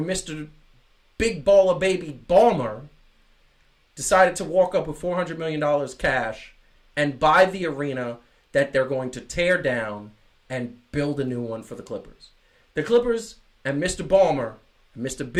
Mr. Big Baller Baby Balmer decided to walk up with $400 million cash and buy the arena that they're going to tear down and build a new one for the Clippers. The Clippers and Mr. Balmer, and Mr.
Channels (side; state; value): both; identical; correlation 1.00